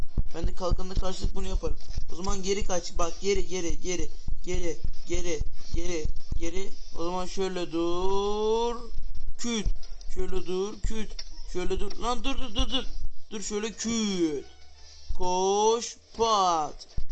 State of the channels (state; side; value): identical; both; correlation 1.00